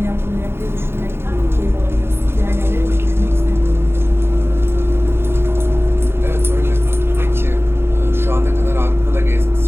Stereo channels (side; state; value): left; late; 0.11 ms